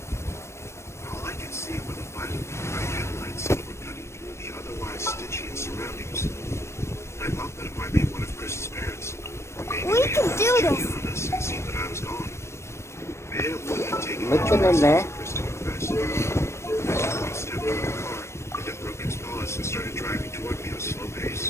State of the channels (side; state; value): right; late; 0.13 ms